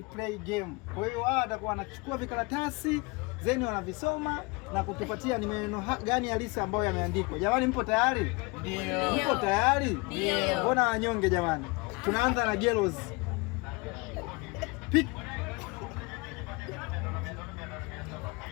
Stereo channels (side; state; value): right; quieter; 27.2 dB